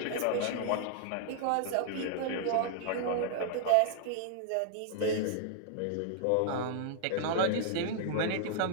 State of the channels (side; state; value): both; different; correlation -0.01